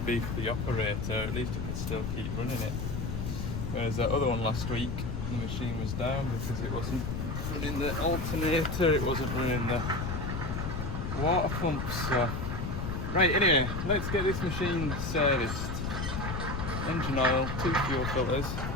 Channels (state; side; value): noise; left; rumble, 3 dB below the sound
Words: be for the operator, at least it can still keep running it. Whereas that other one last week, the machine was down because it wasn't running the alternator, it wasn't running the water pump. So, right, anyway, let's get this machine serviced. Engine oil, 2 fuel filters,